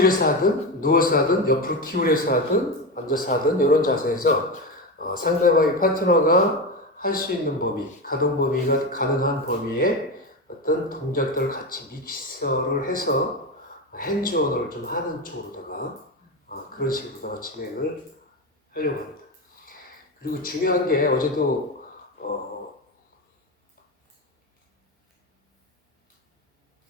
하든 누워서 하든 옆으로 기울여서 하든 앉아서 하든 이런 자세에서 상대방의 파트너가 할 수 있는 범위, 가동 범위가 가능한 범위에 어떤 동작들을 같이 믹서를 해서 핸즈온을 좀 하는 쪽으로다가 그런 식으로다가 진행을 하려고 합니다. 그리고 중요한 게 어제도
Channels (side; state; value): both; normal; correlation 0.18